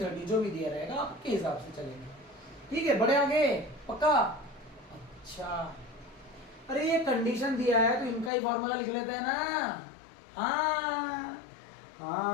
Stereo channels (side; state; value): right; drops out; at 8.3 s